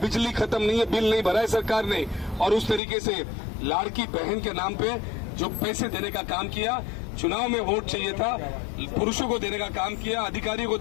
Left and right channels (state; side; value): drops out; right; at 2.8 s